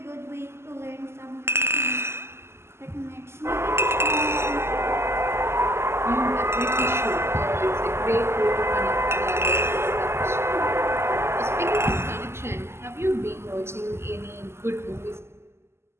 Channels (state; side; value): late; left; 0.12 ms